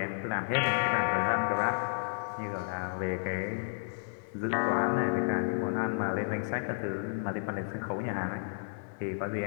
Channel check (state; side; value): silent; right; 56 dB below the other